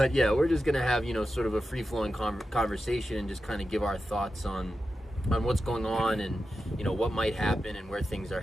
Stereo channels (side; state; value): both; normal; correlation 0.91